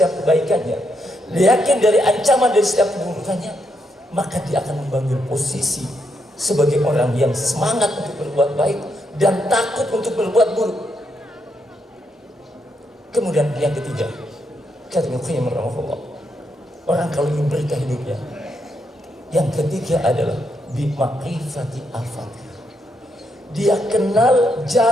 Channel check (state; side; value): normal; both; correlation 0.79